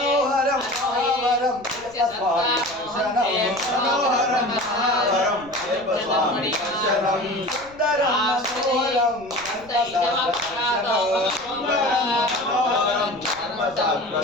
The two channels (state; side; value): noise; left; rumble, 25 dB below the sound